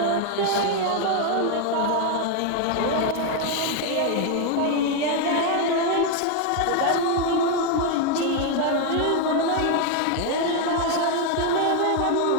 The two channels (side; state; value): both; different; correlation 0.01